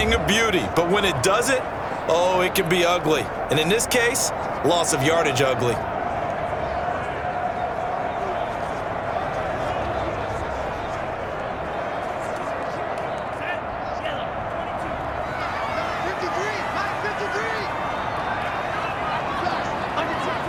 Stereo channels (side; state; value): both; identical; correlation 1.00